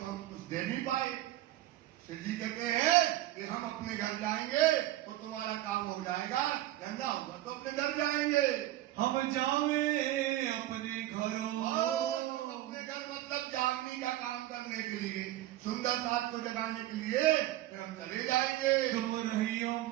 हम कुछ दे नहीं पाए। शिव जी कहते हैं कि हम अपने घर जाएंगे तो तुम्हारा काम हो जाएगा, धंधा होगा तो अपने घर जाएंगे। हम जावे अपने घरों, अपने घर मतलब जागने का काम करने के लिए, सुंदर साथ को जगाने के लिए फिर हम चले जाएंगे। तुम रहियो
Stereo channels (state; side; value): quieter; left; 14.9 dB